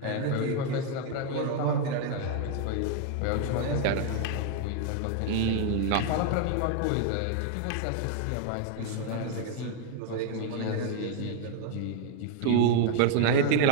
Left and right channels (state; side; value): different; both; correlation 0.00